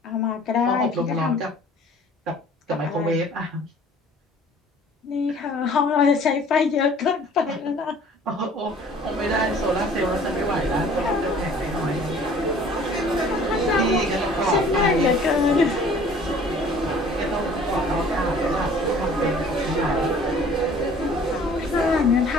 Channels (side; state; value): both; normal; correlation 0.51